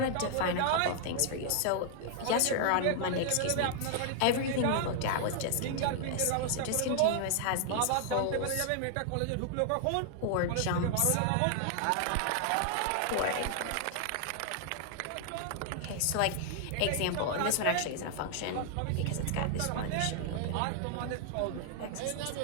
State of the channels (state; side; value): different; both; correlation 0.00